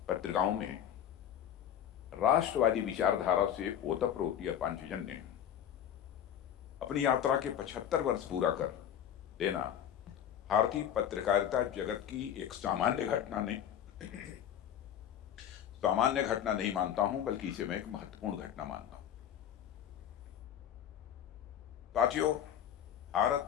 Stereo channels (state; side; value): quieter; right; 9.8 dB